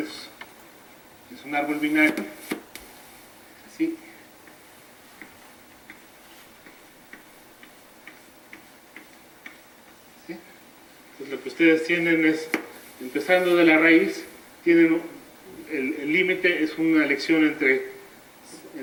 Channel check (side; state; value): both; identical; correlation 1.00